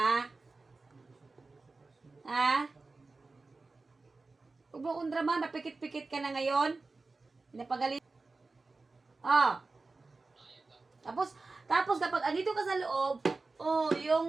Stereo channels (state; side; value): quieter; left; 3.7 dB